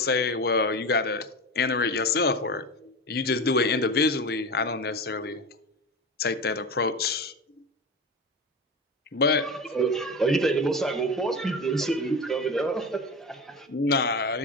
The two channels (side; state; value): both; normal; correlation 0.25